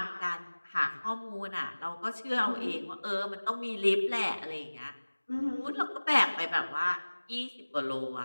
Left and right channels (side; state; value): both; inverted; correlation -1.00